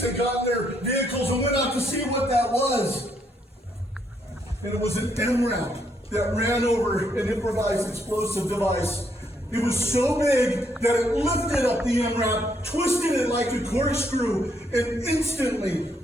and got in their vehicles and went out to see what that was. And it was an MRAP that ran over an improvised explosive device. It was so big that it lifted up the MRAP, twisted it like a corkscrew, and instantly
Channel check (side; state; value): both; normal; correlation 0.73